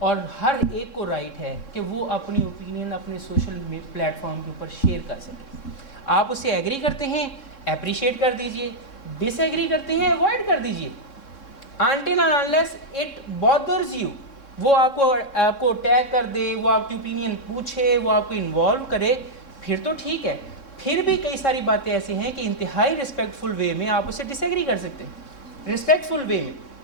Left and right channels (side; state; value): right; late; 3.6 ms